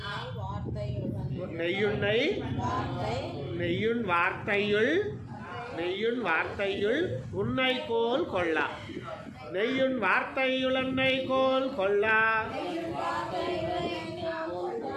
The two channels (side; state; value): both; identical; correlation 1.00